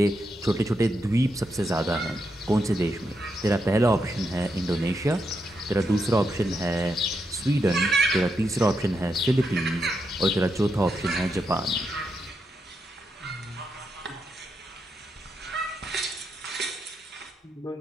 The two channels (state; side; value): normal; both; correlation 0.82